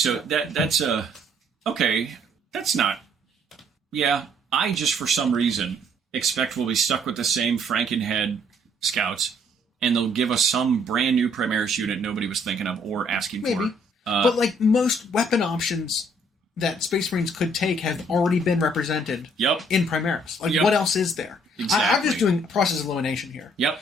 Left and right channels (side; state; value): both; normal; correlation 0.64